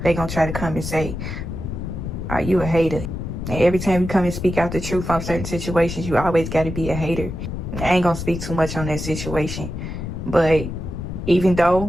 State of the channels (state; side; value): noise; left; rumble, 6 dB below the sound